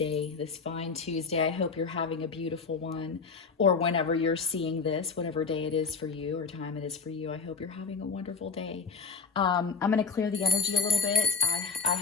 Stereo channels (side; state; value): right; quieter; 4.9 dB